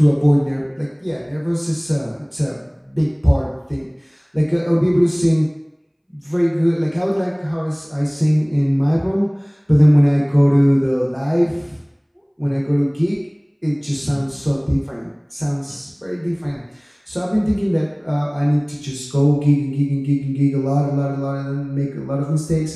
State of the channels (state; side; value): identical; both; correlation 1.00